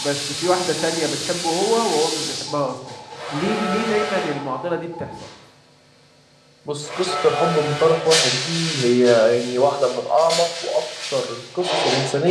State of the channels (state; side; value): identical; both; correlation 1.00